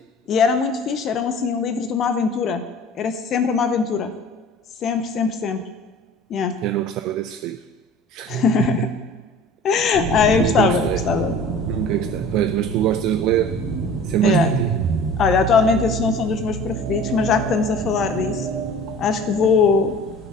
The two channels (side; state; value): both; normal; correlation 0.43